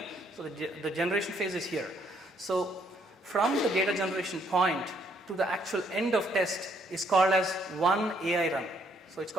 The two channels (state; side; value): normal; both; correlation 0.69